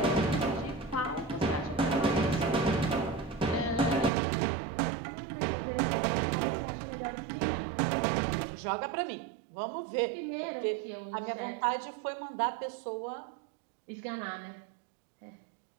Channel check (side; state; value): left; drops out; at 4.1 s